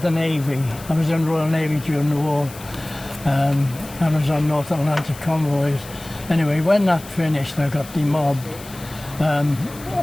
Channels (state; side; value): noise; left; hiss, 17 dB below the sound